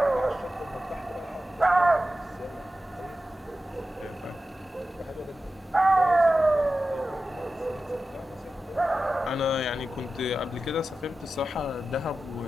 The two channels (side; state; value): both; normal; correlation 0.93